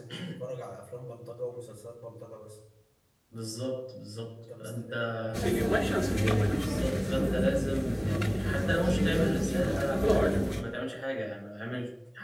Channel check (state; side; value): identical; both; correlation 1.00